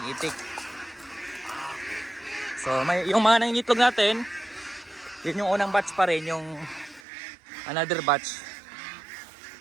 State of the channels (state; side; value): drops out; left; at 7.0 s